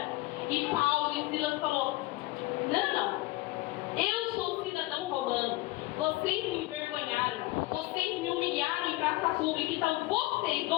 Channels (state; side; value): quieter; right; 20.0 dB